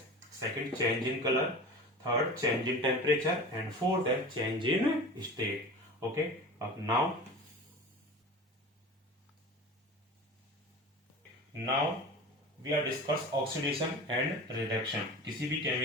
second change in colour, third change in temperature, and fourth है चेंज इन स्टेट। ओके, अब now we are discuss oxidation and reduction. किसी भी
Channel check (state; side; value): normal; both; correlation 0.34